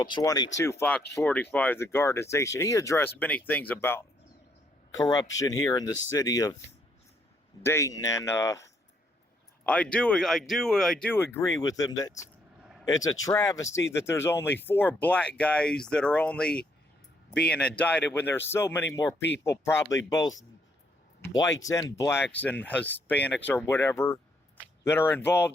22, Fox 45, the Garden Station. He addressed many things about corruption here in the city of Dayton, and I do agree with him that it's a travesty that there's only 4 black guys that are only being indicted when there's so many more people, probably both whites and blacks and Hispanics or whatever, that are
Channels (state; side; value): normal; both; correlation 0.72